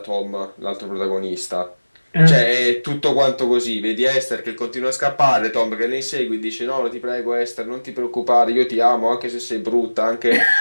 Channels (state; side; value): inverted; both; correlation -1.00